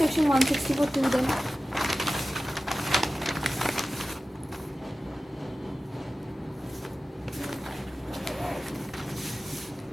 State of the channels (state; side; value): normal; both; correlation 0.95